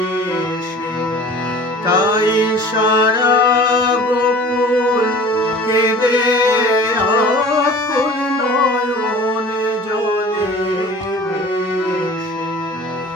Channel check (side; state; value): both; normal; correlation 0.43